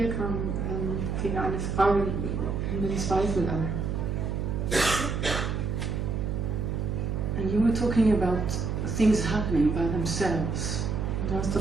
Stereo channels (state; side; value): noise; right; hum, 1 dB below the sound